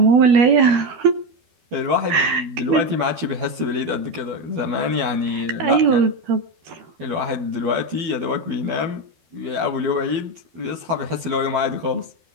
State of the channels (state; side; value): late; left; 12 ms